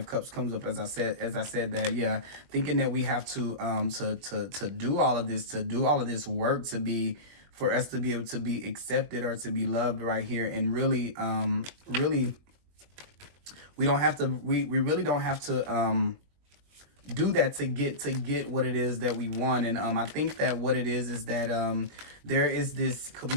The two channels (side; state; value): left; late; 21 ms